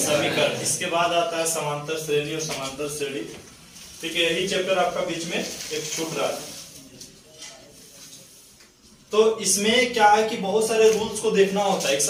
इसके बाद आता है समांतर श्रेणी और समांतर श्रेणी। ठीक है, यही चैप्टर आपका बीच में एक छूट रहा है। तो इसमें क्या है कि बहुत सारे रूल्स को देखना होता है।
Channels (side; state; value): both; identical; correlation 1.00